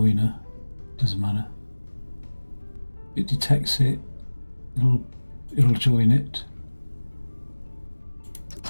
doesn't matter. It detects it, it'll join it.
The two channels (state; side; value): inverted; both; correlation -1.00